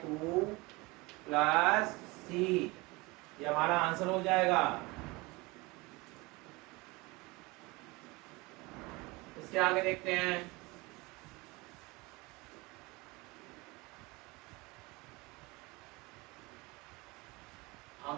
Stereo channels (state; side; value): quieter; left; 24.1 dB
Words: 2 plus c। ये हमारा आंसर हो जाएगा। इसके आगे देखते हैं,